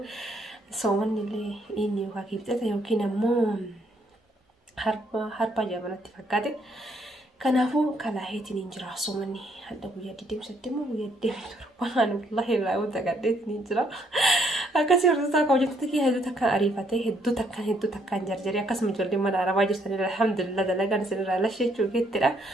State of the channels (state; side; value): normal; both; correlation 0.70